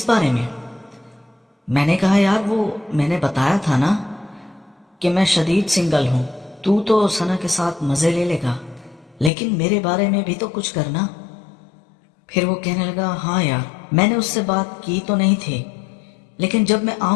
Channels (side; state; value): right; drops out; at 9.3 s